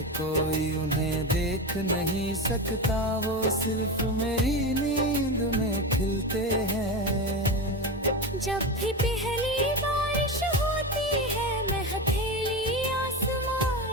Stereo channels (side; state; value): both; normal; correlation 0.20